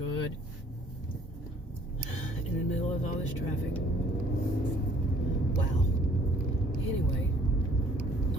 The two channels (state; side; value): normal; both; correlation 0.58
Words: In the middle of all this traffic. Wow. Anyway,